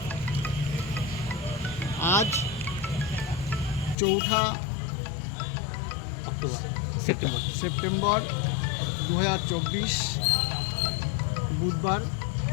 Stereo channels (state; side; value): drops out; right; at 4.0 s